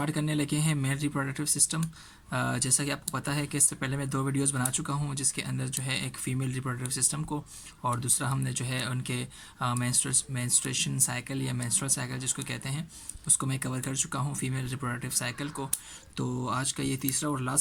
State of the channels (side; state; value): both; identical; correlation 1.00